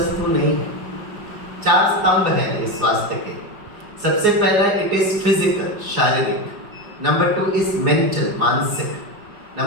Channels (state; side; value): late; left; 4.8 ms